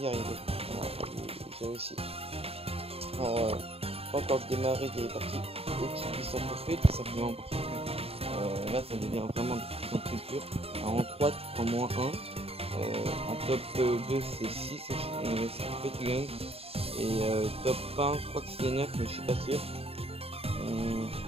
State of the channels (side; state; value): left; late; 0.28 ms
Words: arrivé, voilà, j'ai réussi. Alors, pas encore démarré des parties au-dessus de 800 trophées, tout simplement parce que là ça devient vraiment de plus en plus dur. Alors, en 3 tu prends moins 1, en top 2 c'est 6 trophées tu gagnes, et top 1 je crois que c'est 9 mais je suis pas sûr.